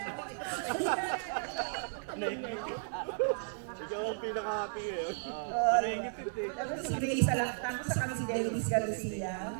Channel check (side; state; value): left; silent; 55 dB below the other